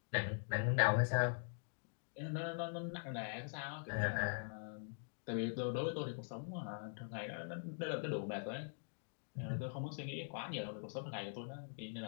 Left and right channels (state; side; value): silent; right; digital silence